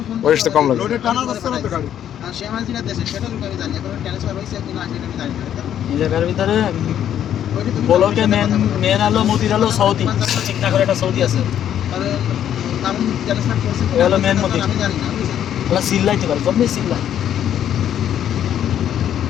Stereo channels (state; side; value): quieter; right; 10.2 dB